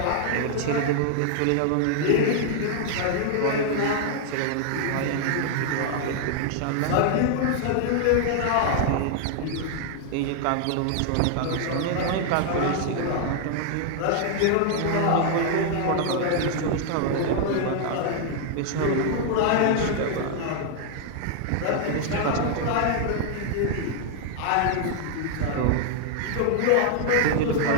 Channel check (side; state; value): both; different; correlation 0.00